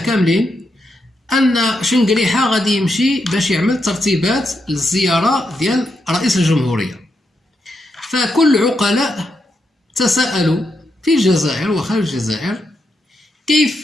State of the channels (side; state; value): both; normal; correlation 0.83